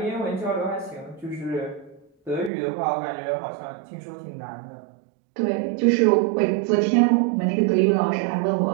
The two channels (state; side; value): drops out; left; at 2.5 s